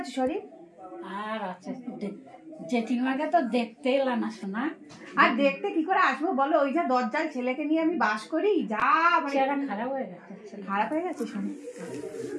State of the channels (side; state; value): both; identical; correlation 1.00